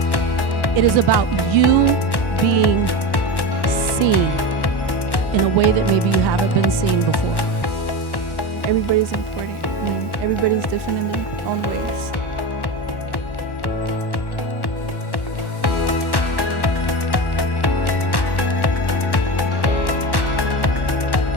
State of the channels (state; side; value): late; right; 1.1 ms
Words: It is about you being seen in a way that maybe you haven't been seen before. Everybody's important. I mean, everybody's different in their own ways.